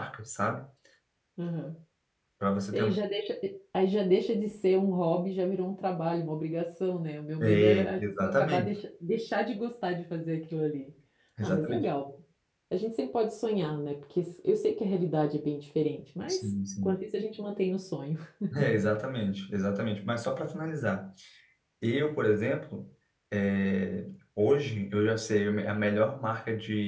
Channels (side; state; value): both; identical; correlation 1.00